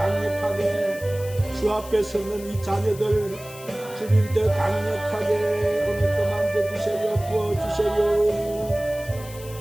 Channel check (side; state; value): left; noise; hiss, 17 dB below the sound